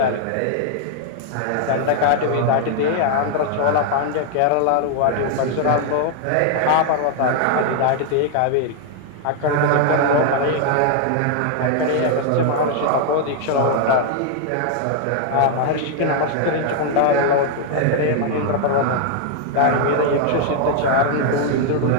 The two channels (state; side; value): different; both; correlation 0.00